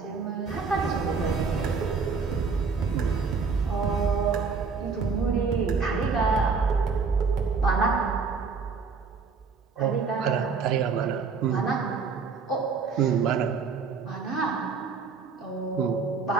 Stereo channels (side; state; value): left; quieter; 5.0 dB